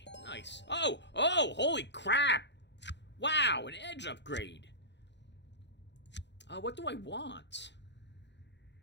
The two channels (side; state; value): right; late; 0.51 ms